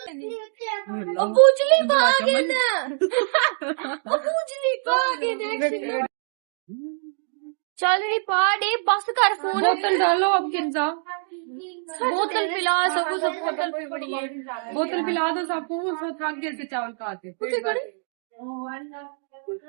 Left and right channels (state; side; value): silent; left; 62 dB below the other